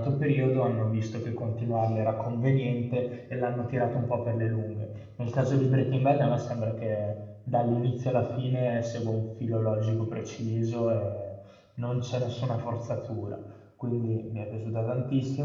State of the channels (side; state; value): both; identical; correlation 1.00